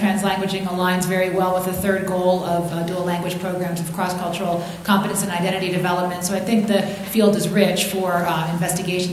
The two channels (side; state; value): both; identical; correlation 1.00